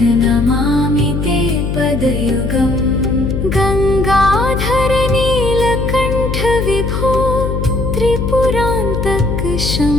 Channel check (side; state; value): left; noise; hum, 2 dB below the sound